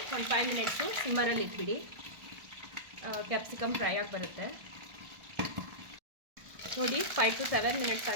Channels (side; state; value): left; late; 1.4 ms